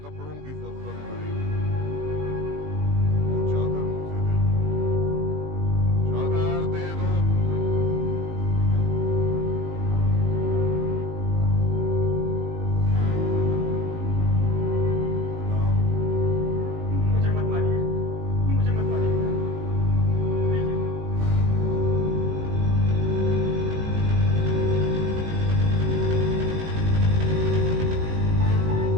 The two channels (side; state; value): left; late; 19 ms